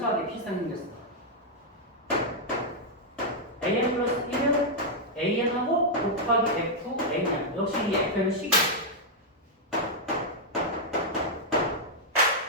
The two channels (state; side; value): normal; both; correlation -0.04